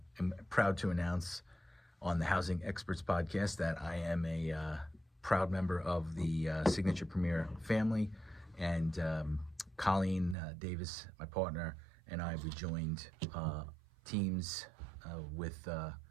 am proud to announce on the Housing Experts podcast that I am a proud member of the Signature Premier family, and Colleen Davis, my partner, and I, we joined teams we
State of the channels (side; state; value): left; drops out; at 10.4 s